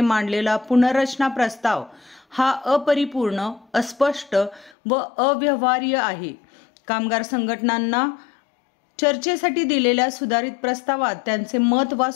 पुनर्रचना प्रस्ताव हा अपरिपूर्ण, अस्पष्ट व अव्यवहार्य आहे। कामगार संघटनांना चर्चेसाठी दिलेल्या सुधारित प्रस्तावात त्यांचे मत वा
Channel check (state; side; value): drops out; right; at 4.7 s